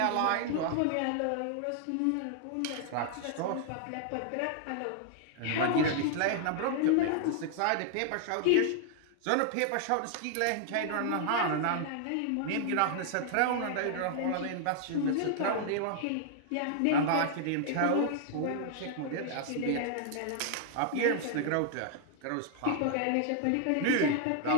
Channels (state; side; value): different; both; correlation 0.00